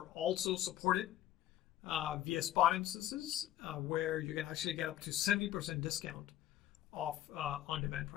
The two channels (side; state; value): right; quieter; 12.9 dB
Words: also supported via spot instances, where you can actually get up to 70% discount off on-demand